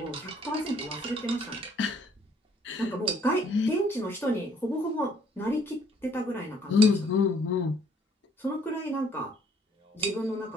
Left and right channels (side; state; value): both; normal; correlation 0.63